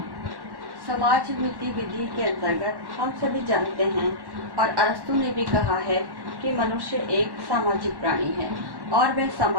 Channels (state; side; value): late; left; 1.1 ms